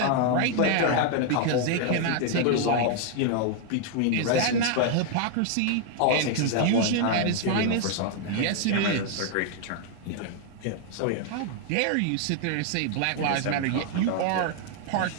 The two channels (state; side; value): different; both; correlation 0.00